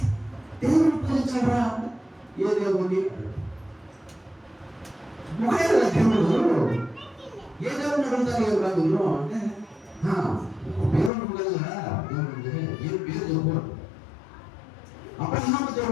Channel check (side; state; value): right; drops out; at 11.1 s